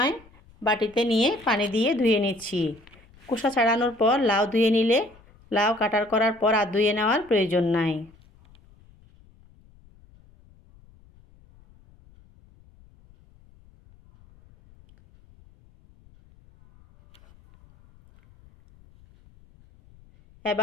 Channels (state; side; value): noise; left; rumble, 28 dB below the sound